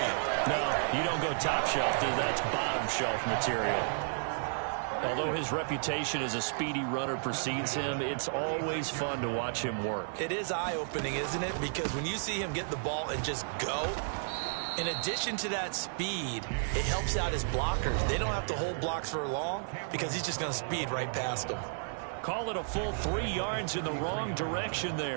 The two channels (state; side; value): silent; left; digital silence